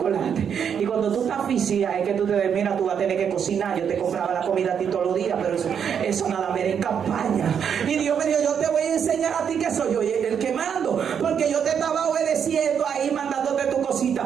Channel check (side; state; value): left; quieter; 7.7 dB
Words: y cuando tú estás asfixiada, es que tú te ves, mira, tú vas a tener que cocinar, yo te compraba la comida a ti todos los días, pero eso nada me era en campaña. Y Dios me dijo, yo te voy a enseñar a ti que soy yo el que mando, porque yo te estaba obedeciendo ahí, mandándote tu cosita,